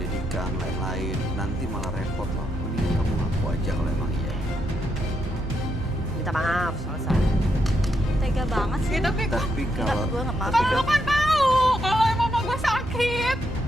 lain-lain, nanti malah repot loh. Mending kamu ngaku aja kalau emang iya. Minta maaf, selesai. Tega banget sih. Tapi Tapi Enggak, kalau gue gak maaf. lu kan tahu kalau emang mama gue sakit.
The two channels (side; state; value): both; normal; correlation 0.80